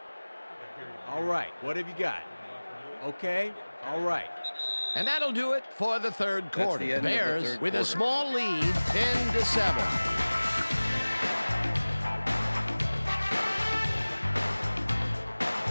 All right, what have you got? Okay, all right. And that'll do it for the third quarter. the end of the Bears third with a quarter. small lead, 10-7.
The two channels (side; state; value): both; inverted; correlation -1.00